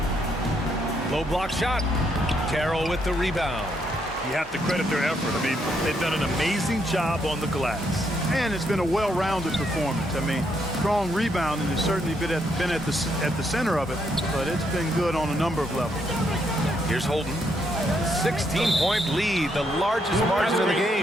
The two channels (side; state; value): both; normal; correlation 0.75